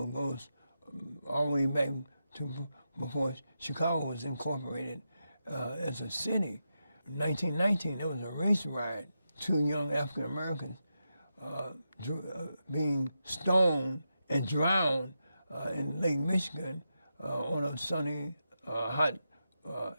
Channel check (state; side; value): inverted; both; correlation -0.87